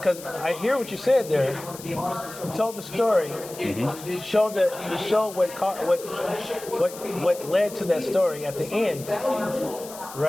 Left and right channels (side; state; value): left; noise; hiss, 15 dB below the sound